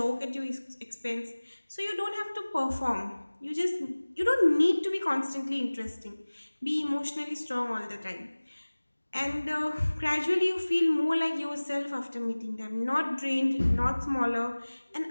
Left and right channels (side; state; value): both; inverted; correlation -1.00